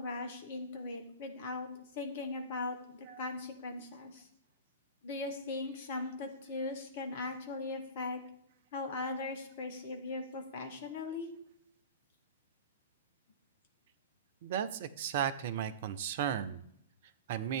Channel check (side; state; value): both; inverted; correlation -0.34